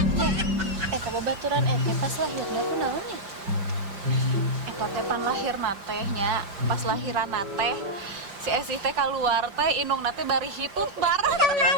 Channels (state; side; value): late; left; 5.3 ms